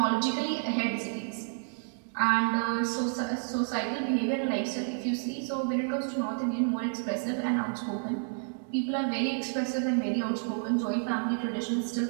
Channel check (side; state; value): left; silent; digital silence